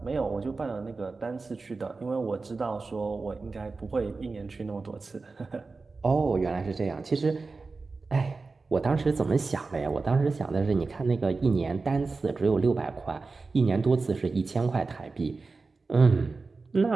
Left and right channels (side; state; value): left; quieter; 4.0 dB